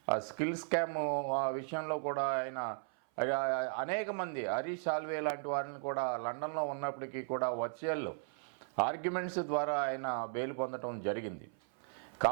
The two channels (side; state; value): left; silent; 54 dB below the other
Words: ఆ స్కిల్ స్కామ్ విషయంలో కూడా ఆయన అనేక మంది హరీష్ సాల్వే లాంటి వారిని కూడా లండన్లో ఉన్నప్పటికీ కూడా వర్చువల్ ఆర్గ్యుమెంట్స్ ద్వారా ఆయన బెయిల్ పొందడం జరిగింది.